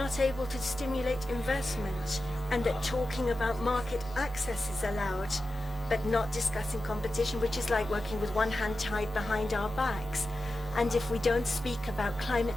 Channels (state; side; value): normal; both; correlation 0.92